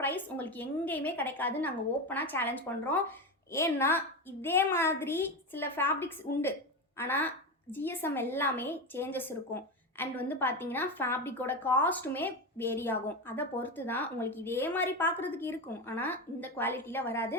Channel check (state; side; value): normal; both; correlation 0.17